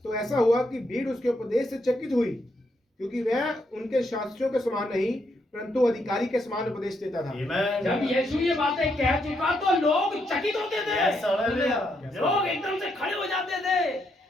तो ऐसा हुआ कि भीड़ उसके उपदेश से चकित हुई, क्योंकि वह उनके शास्त्रियों के समान नहीं परंतु अधिकारी के समान उपदेश देता था। Amen. जब यीशु ये बातें कह चुका तो लोग चकित होते थे। Yes. Hallelujah. लोग एकदम से खड़े हो जाते थे,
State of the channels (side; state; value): both; normal; correlation 0.78